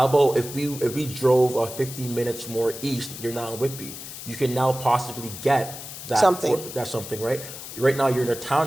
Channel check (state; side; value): noise; left; hiss, 11 dB below the sound